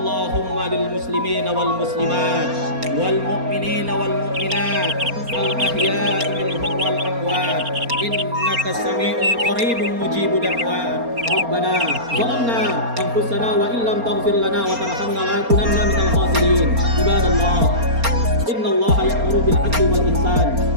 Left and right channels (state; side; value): late; left; 4.3 ms